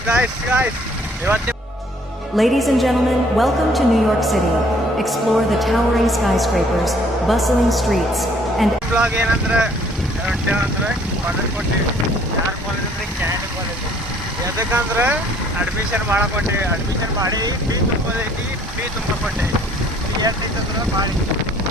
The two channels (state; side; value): normal; both; correlation 0.60